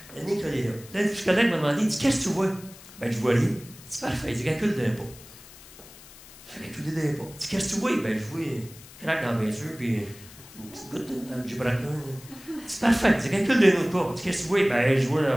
la ligne collée là. Là, le psychologue m'a demandé, il dit, qu'est-ce que tu vois? Ben, je vois rien. Il dit, parfait. Il dit, calcule d'un pas. Je fais calculer d'un pas. Il dit, qu'est-ce que tu vois? Ben, je vois une craque dans mes yeux, puis une petite goutte dans le gibraltar. C'est parfait. Il dit, calcule d'un autre pas. Il dit, qu'est-ce que tu vois? Ben, je vois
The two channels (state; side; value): noise; left; hiss, 20 dB below the sound